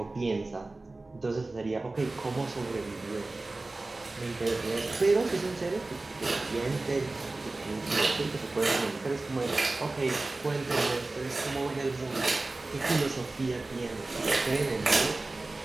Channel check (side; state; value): left; quieter; 3.2 dB